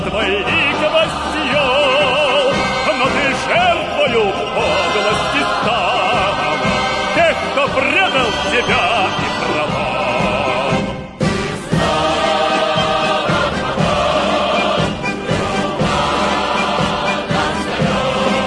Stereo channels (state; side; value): identical; both; correlation 1.00